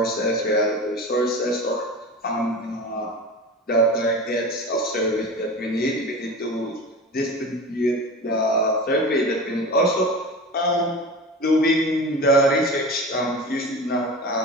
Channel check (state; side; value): normal; both; correlation 0.31